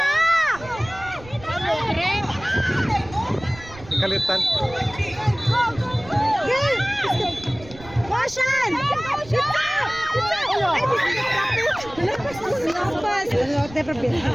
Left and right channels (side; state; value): right; noise; rumble, 18 dB below the sound